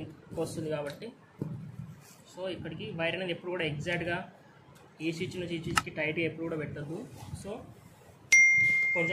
వస్తుంది కాబట్టి. సో ఇక్కడికి వైర్ అనేది ఎప్పుడు కూడా ఎగ్జాక్ట్గా ఈ స్విచ్ నుంచి ఈ స్విచ్కి టైట్గా ఎప్పుడు కూడా పెట్టద్దు. సో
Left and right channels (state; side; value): identical; both; correlation 1.00